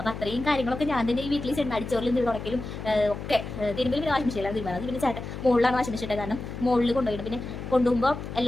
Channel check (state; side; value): noise; left; hum, 8 dB below the sound